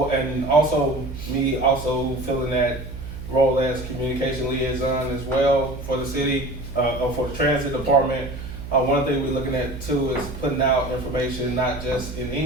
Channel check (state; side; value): noise; right; hum, 10 dB below the sound